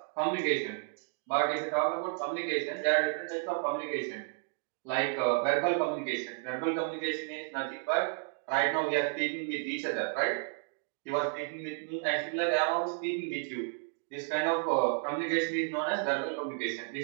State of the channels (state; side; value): silent; left; 56 dB below the other